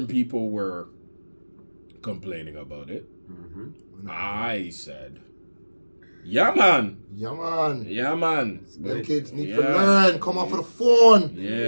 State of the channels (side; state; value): both; inverted; correlation -1.00